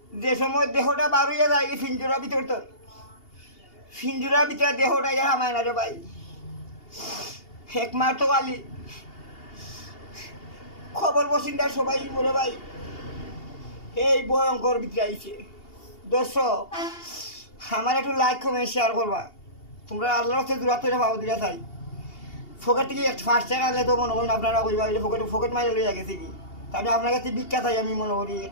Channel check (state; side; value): late; right; 2.8 ms